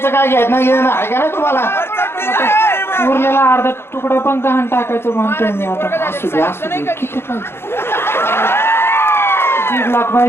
काय घ्यायचं नाही घेणं आहे का नाही तुम्हाला? उरलेला अर्धा तुकडा पण गहाण टाकायचं म्हणतोय मी आता. असू दे, किती पाहिजे? 1.5 लाख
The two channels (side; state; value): right; late; 0.12 ms